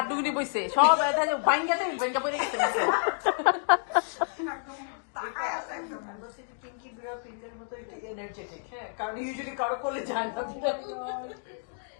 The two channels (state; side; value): silent; right; digital silence